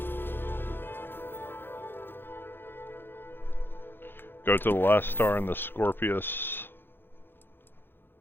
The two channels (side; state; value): right; late; 0.10 ms